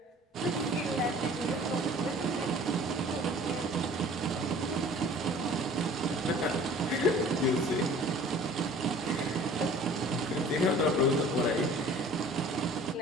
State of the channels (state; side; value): normal; both; correlation 0.48